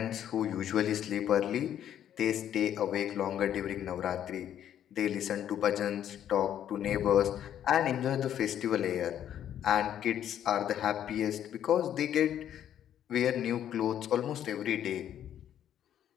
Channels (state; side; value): quieter; right; 10.4 dB